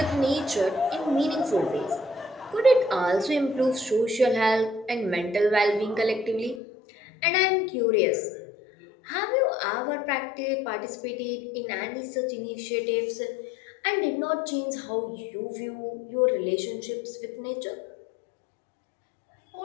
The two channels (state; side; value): drops out; right; at 6.6 s